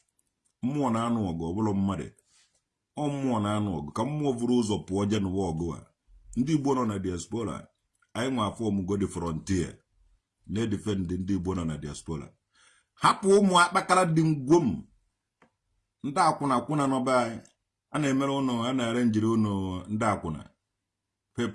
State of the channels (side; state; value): both; identical; correlation 1.00